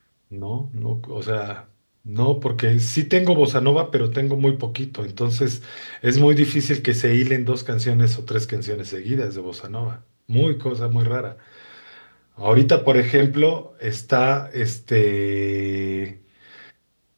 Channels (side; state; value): both; inverted; correlation -1.00